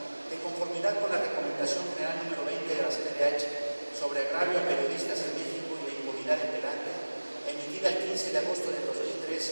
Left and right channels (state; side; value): inverted; both; correlation -1.00